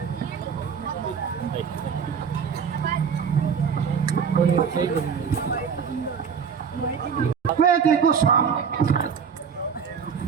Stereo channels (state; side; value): quieter; left; 6.7 dB